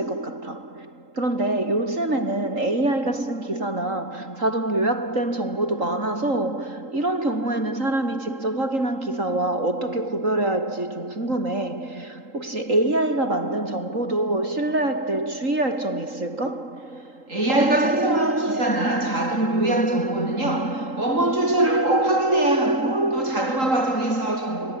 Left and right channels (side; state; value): left; late; 3.8 ms